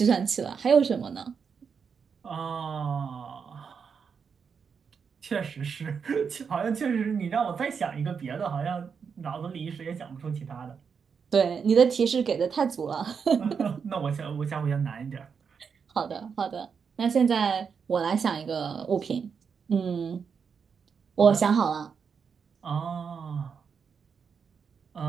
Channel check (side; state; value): left; quieter; 6.3 dB